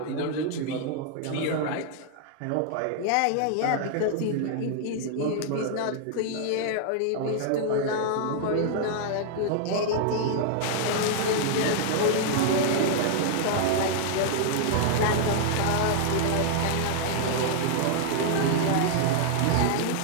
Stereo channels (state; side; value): different; both; correlation 0.00